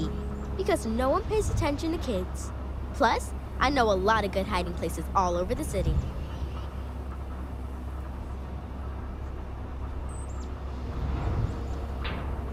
because no one pays attention to kids. Plus, I know a lot of good hiding places all over the city.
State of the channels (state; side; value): identical; both; correlation 1.00